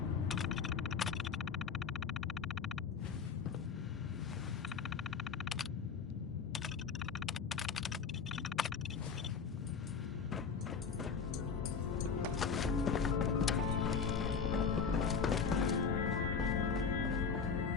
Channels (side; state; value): right; quieter; 5.9 dB